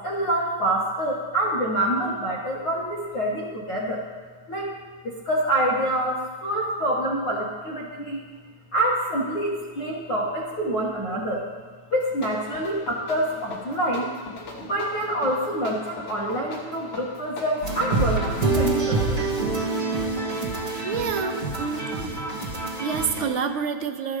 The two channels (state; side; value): late; right; 9.2 ms